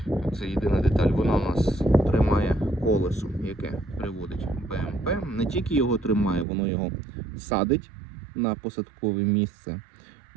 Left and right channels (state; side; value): drops out; left; at 6.5 s